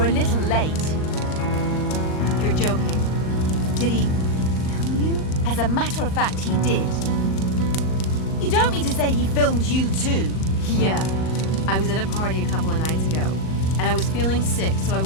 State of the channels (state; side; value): late; right; 38 ms